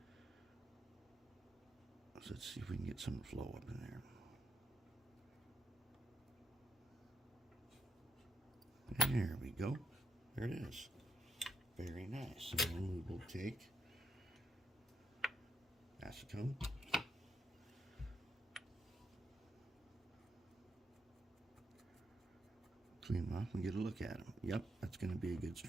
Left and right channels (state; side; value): normal; both; correlation 0.79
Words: So let's see if we can get some flow up in there. There we go. There it is. Very nice. And then we will take acetone. Clean them off and get a look at them. Yep, that's going to be a good